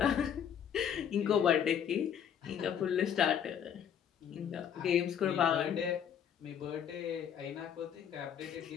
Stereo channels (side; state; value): right; quieter; 8.6 dB